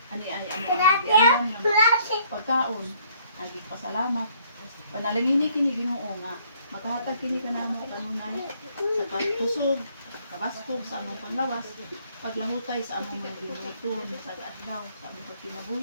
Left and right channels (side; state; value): both; inverted; correlation -0.63